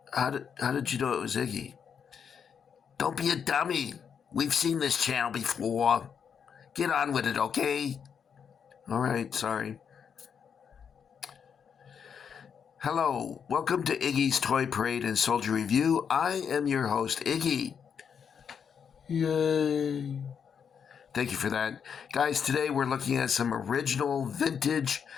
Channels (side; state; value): right; quieter; 7.2 dB